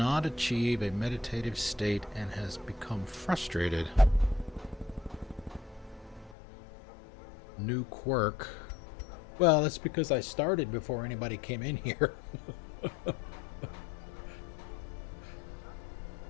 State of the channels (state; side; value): drops out; right; at 6.4 s